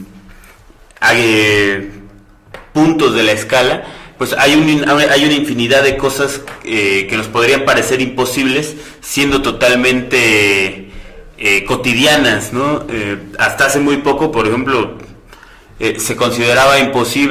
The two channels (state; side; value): identical; both; correlation 1.00